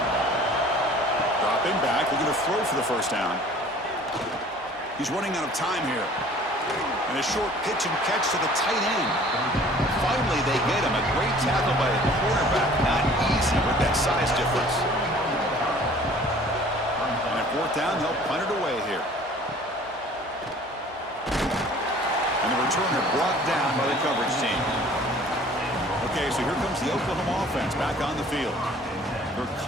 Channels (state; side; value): normal; both; correlation 0.50